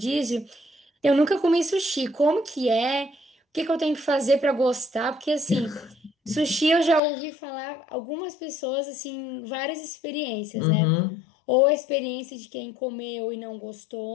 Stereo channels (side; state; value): right; drops out; at 7.0 s